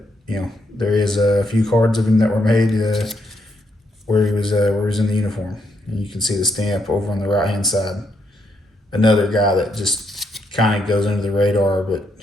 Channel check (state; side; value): normal; both; correlation 0.77